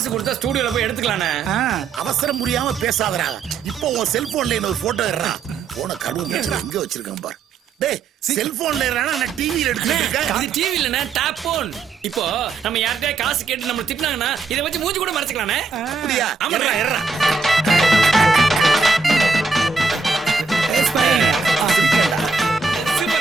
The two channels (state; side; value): quieter; left; 4.7 dB